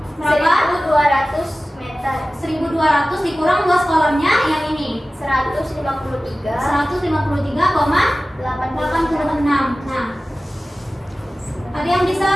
berapa? 1200 meter. 1200 dikurang luas kolamnya yang ini 153,86. 153,86. Nah, ada yang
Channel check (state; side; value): normal; both; correlation 0.96